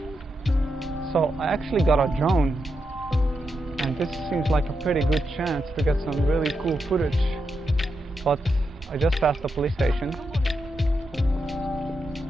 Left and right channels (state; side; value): normal; both; correlation 0.85